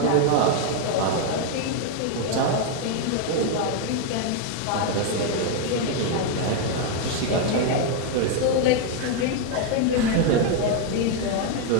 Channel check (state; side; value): different; both; correlation 0.01